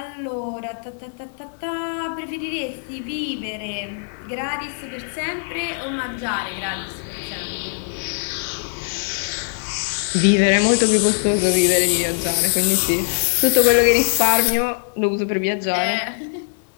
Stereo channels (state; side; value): silent; right; digital silence